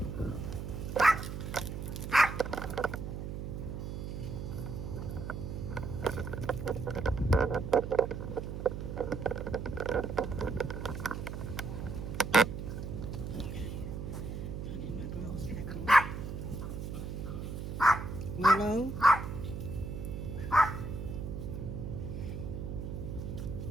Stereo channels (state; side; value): noise; right; hum, 6 dB below the sound